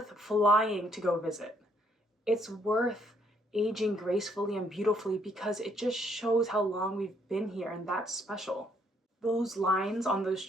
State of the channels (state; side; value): normal; both; correlation 0.69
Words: flying to go visit. It's worth aging gracefully and beautifully because it just shows how long we've been here, and that's special. Those lines on those